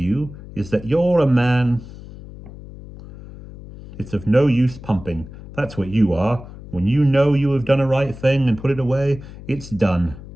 is that you're a man. It's of no use pumping. That's what you are. When you know you have done a right thing and put it away, it's done.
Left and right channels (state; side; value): noise; left; hum, 16 dB below the sound